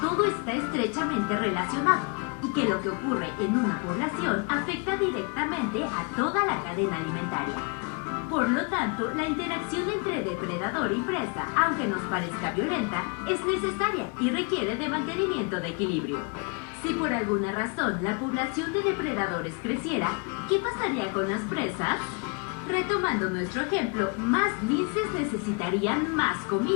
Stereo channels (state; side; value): quieter; right; 34.0 dB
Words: está estrechamente relacionado y que lo que ocurre en una población afecta directamente a toda la cadena alimentaria. Por lo tanto, la interacción entre depredador y presa, aunque nos parezca violenta, es necesaria y requiere de mantenimiento de equilibrio. Si por alguna razón la población de depredadores creciera, ¿qué pasaría con las presas? Retomando nuestro ejemplo, más linces necesitarían más